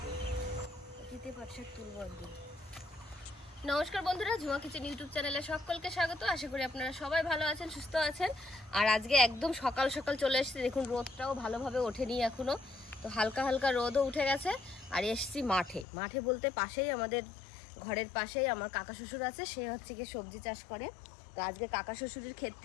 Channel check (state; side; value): drops out; right; at 15.9 s